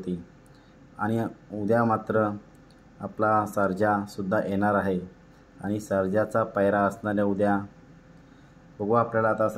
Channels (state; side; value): identical; both; correlation 1.00